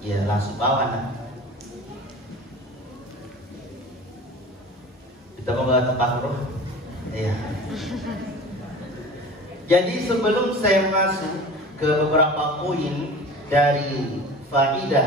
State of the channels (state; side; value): normal; both; correlation 0.38